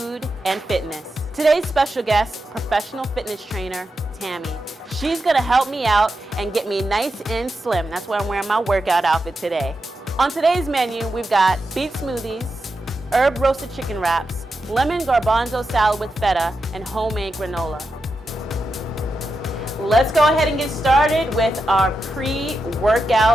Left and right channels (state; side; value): normal; both; correlation 0.88